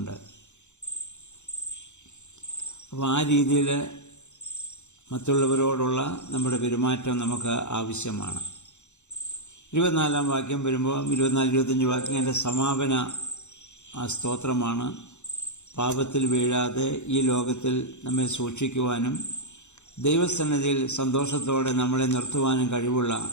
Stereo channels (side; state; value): right; late; 0.83 ms